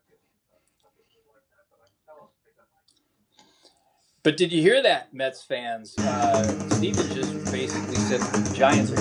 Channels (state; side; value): identical; both; correlation 1.00